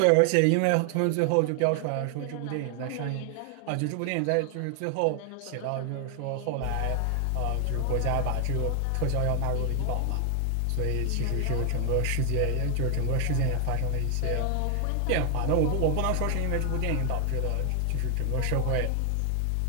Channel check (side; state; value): both; different; correlation 0.00